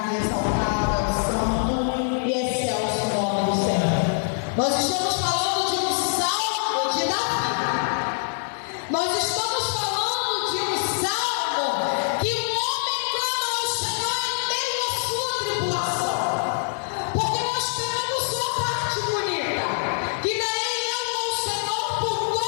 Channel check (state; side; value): silent; right; digital silence